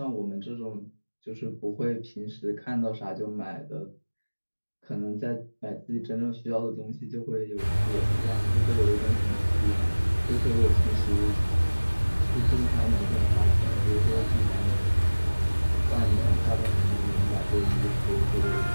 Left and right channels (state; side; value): inverted; both; correlation -1.00